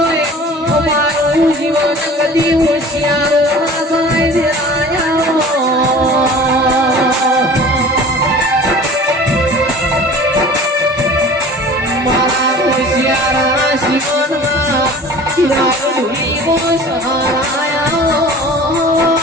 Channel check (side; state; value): both; normal; correlation 0.42